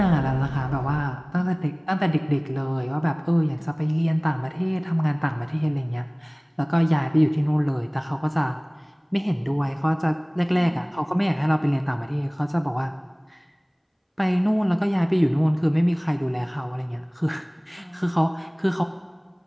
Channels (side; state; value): both; identical; correlation 1.00